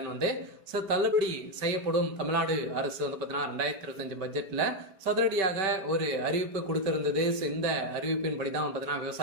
வந்து தள்ளுபடி செய்யப்படும். தமிழ்நாடு அரசு வந்து பார்த்தீங்கன்னா 2025 பட்ஜெட்டில் சதுரடியாக ஒரு அறிவிப்பு கொடுத்திருந்தது. இந்த அறிவிப்பின்படி தான் பார்த்தீங்கன்னா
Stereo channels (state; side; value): late; left; 5.1 ms